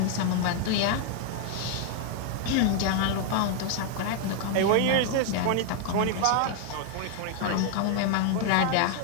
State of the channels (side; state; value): both; different; correlation 0.00